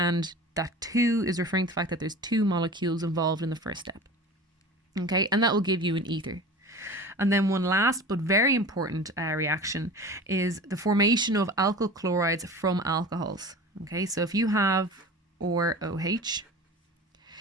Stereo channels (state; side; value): normal; both; correlation 0.36